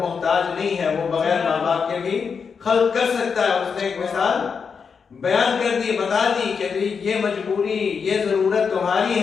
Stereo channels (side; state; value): right; quieter; 5.9 dB